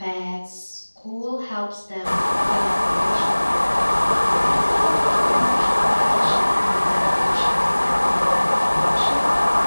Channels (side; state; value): both; inverted; correlation -1.00